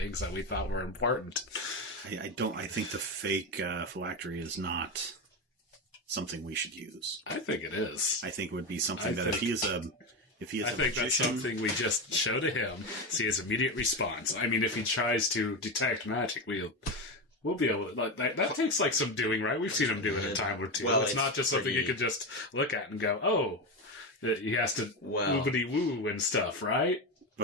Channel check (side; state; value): both; normal; correlation 0.15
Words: that we thought were important. I think the fake phylactery is not something we should use. I think it is. I think it would be something if he is a magician, that's something we just show to him, see his immediate response. I mean, if he tries to detect magic, we'll be able to... That takes some doing, right? We've seen him do it a time or two. Well, it's not just something you could just look at and go, oh, he has to woobity-woo and stuff, right?